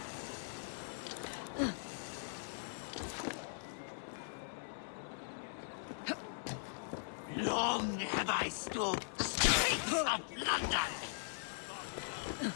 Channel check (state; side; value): silent; right; digital silence